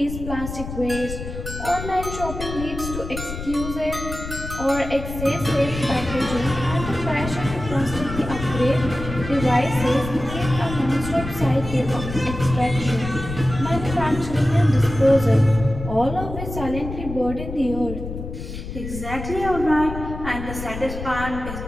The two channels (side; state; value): left; noise; rumble, 8 dB below the sound